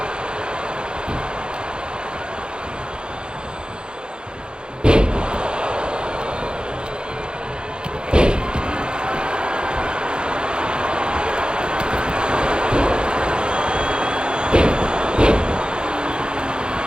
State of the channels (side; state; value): left; late; 0.049 ms